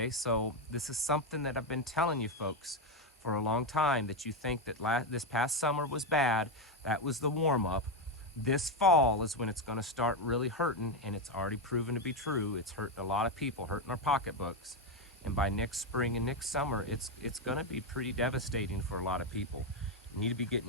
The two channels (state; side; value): normal; both; correlation 0.07